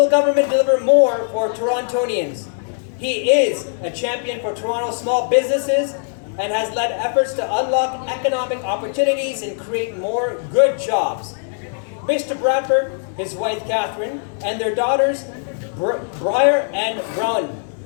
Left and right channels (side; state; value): right; silent; 66 dB below the other